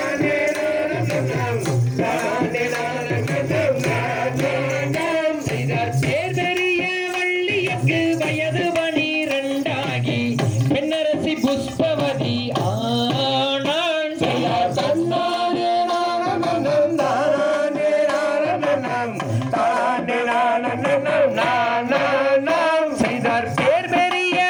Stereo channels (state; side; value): identical; both; correlation 1.00